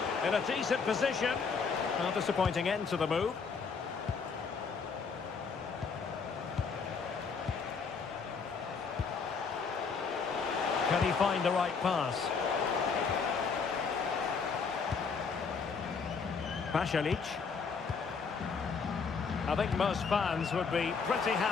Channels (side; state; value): right; quieter; 5.4 dB